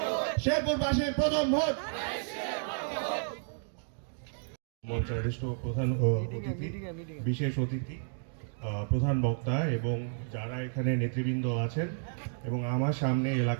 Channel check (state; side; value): silent; left; digital silence